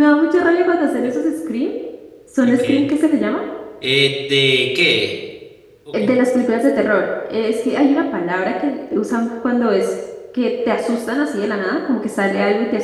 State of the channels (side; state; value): both; identical; correlation 1.00